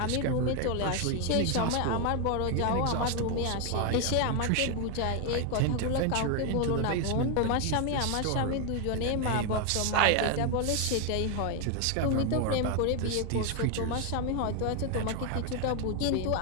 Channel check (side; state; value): both; different; correlation 0.01